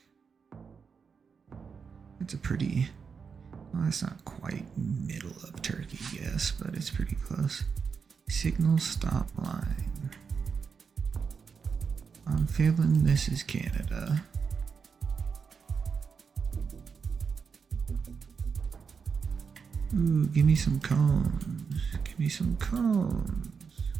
It's a pretty. Well, that's not quite middle of Turkey, yes, but it's pretty close. Signal stop line. I'm feeling this is Canada. Ooh, give me some cones. Give me some cones.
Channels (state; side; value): quieter; left; 5.8 dB